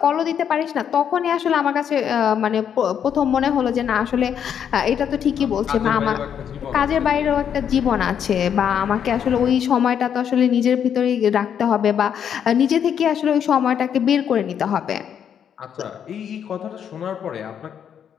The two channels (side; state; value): right; quieter; 8.5 dB